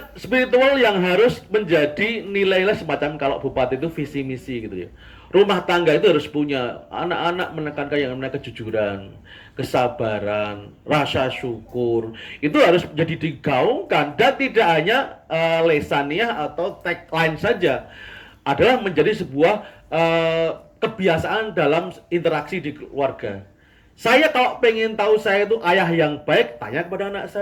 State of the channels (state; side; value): identical; both; correlation 1.00